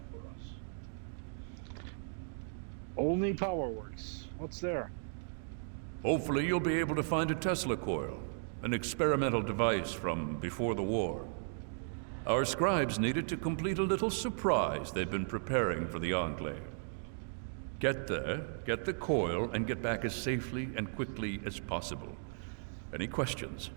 Olney Power Works. What's there? Hopefully you'll be able to find a Tesla coil, an experimental device from before the war. Our scribes needed to complete a little surprise they've been preparing for the Enclave. Get there, get the coil, and get back as safely and quickly as possible. Any questions?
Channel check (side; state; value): left; silent; digital silence